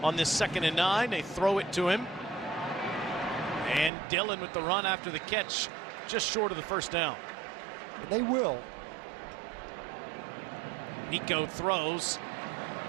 on this 2nd and 9, they throw it to him. And Dylan with the run after the catch, just short of the 1st down. And they will. Nico throws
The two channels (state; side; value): drops out; left; at 3.9 s